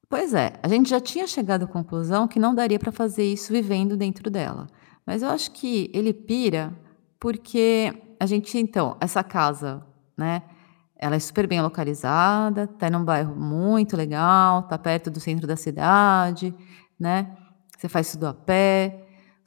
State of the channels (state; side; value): silent; right; 56 dB below the other